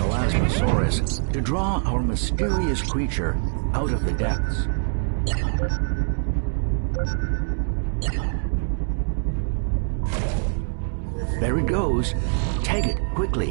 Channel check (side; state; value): left; silent; 63 dB below the other